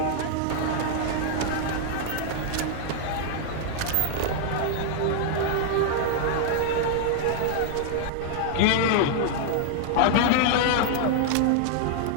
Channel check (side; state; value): both; different; correlation 0.00